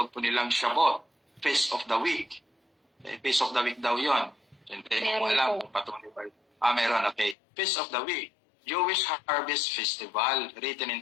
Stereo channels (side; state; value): right; drops out; at 7.4 s